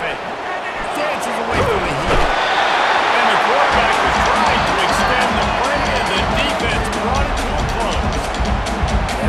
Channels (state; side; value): identical; both; correlation 1.00